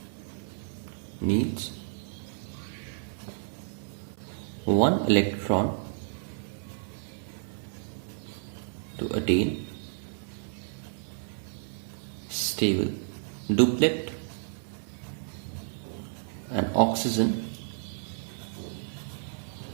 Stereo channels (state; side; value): silent; left; digital silence